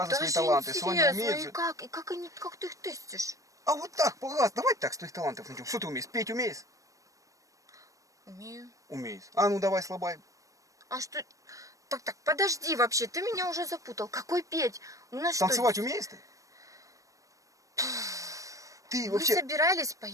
свои Даже таланты. Соня интересно, умеет и же. как ты их тестишь? А вот так, пожалуйста, давай так, с твоих талантов начнем. Что ты умеешь? Петь умеешь? Умею. Умеешь. А ну давай слабай. А что? Так, подожди вообще, ты меня уже запутал. Какой петь? У нас Танцевать что? умеешь ты? Ты Мы вообще... собирались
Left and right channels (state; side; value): late; left; 0.16 ms